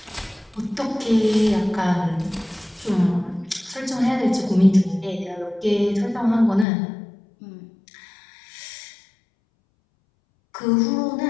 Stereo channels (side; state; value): right; drops out; at 6.7 s